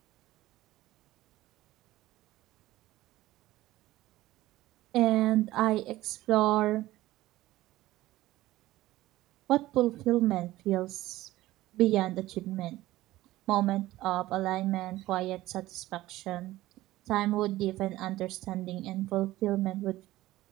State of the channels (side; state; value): left; quieter; 16.5 dB